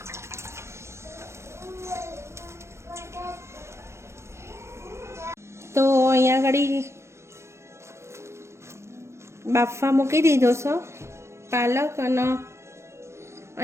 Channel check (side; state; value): left; late; 0.13 ms